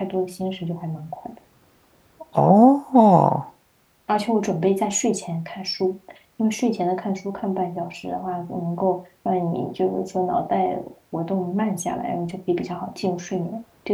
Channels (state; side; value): identical; both; correlation 1.00